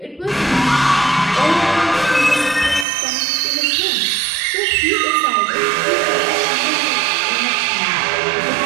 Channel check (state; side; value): drops out; left; at 2.9 s